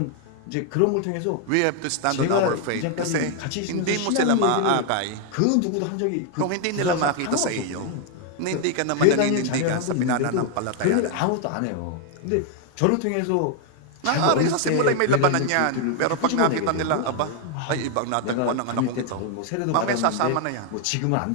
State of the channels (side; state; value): both; different; correlation 0.00